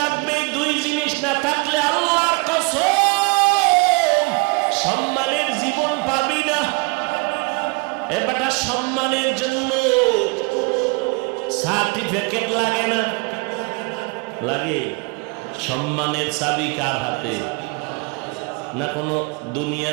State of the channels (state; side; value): quieter; left; 30.3 dB